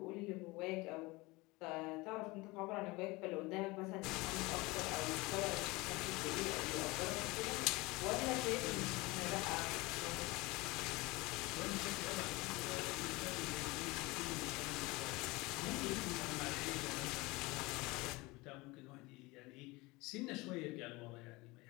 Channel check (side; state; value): right; quieter; 23.0 dB